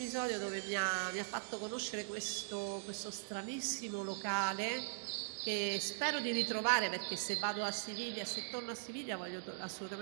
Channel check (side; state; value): left; silent; digital silence